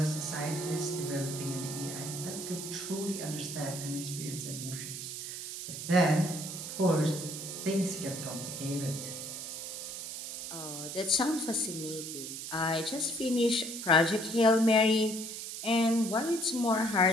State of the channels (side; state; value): right; noise; hiss, 7 dB below the sound